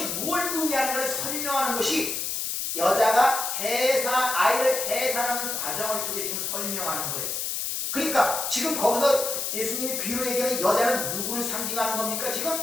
무엇을 의미하는가를 설명하는 것이 여자가 아이를 해산하는 과정을 통해 지금 설명하는 거예요. 그러니까 지금 거기서 예수님이 비유로 얘기하는 여자는 누구를 상징하는 겁니까? 지금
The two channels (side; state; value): left; noise; hiss, 2 dB below the sound